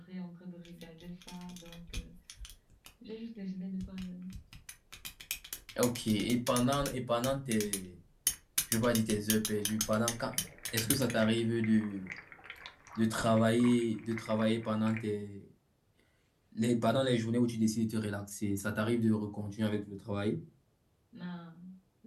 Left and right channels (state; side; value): identical; both; correlation 1.00